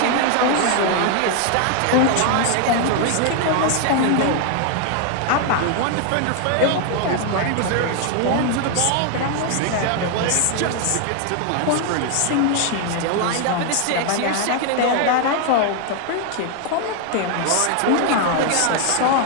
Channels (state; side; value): different; both; correlation 0.00